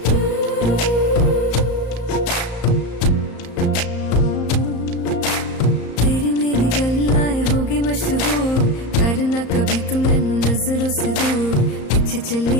मशहूर करना कभी तू मैनू नजरों से दूर। पीछे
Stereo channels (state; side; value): late; right; 34 ms